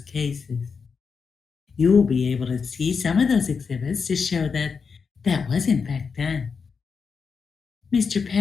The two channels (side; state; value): right; quieter; 5.5 dB